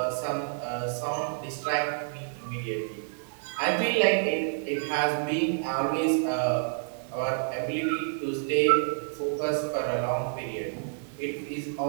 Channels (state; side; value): silent; left; digital silence